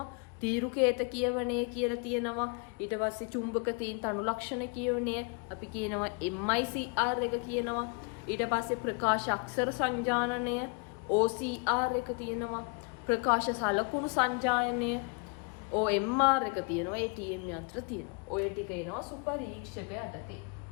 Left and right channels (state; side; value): quieter; right; 34.2 dB